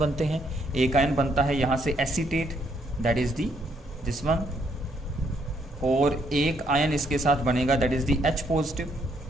हैं, एक आयन बनता है यहाँ से acetate, that is the this one, और एक आयन इसके साथ बनेगा that is the H positive.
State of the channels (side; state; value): both; normal; correlation 0.71